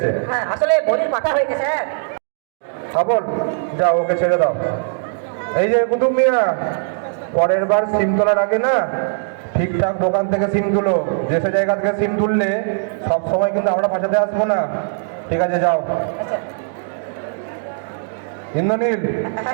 হ্যাঁ, আসলে বলির পাঠা হয়েছে স্যার। খবর যাও, ওকে ছেড়ে দাও। এই যে কুতুব মিয়া, পরের বার সিম তোলার আগে না ঠিকঠাক দোকান থেকে সিম তুলো, যে সে জায়গা থেকে সিম তুললে সব সময় কিন্তু আমরা বাঁচাতে আসবো না। ঠিক আছে, যাও। আচ্ছা। ইন্দ্রনীল,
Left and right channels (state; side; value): silent; left; digital silence